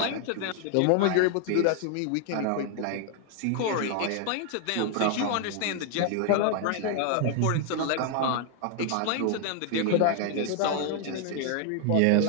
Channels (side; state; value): both; different; correlation 0.00